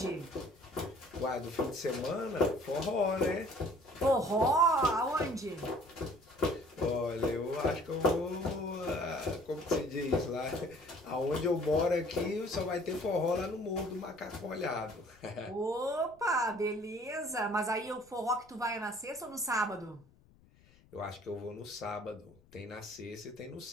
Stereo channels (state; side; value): noise; left; rumble, 28 dB below the sound